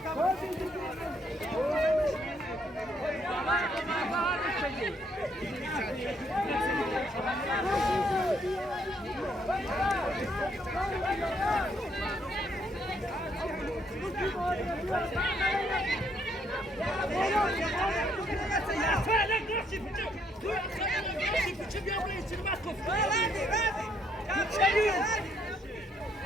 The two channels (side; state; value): both; normal; correlation 0.70